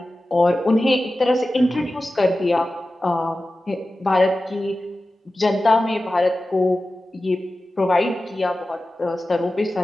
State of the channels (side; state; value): both; normal; correlation 0.94